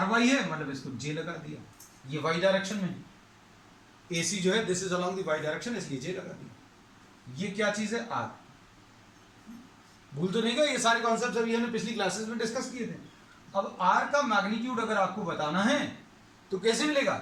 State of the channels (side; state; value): both; identical; correlation 1.00